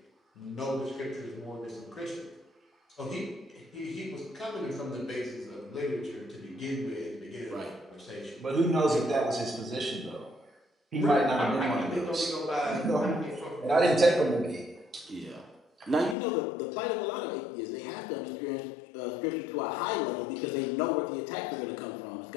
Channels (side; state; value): right; drops out; at 16.2 s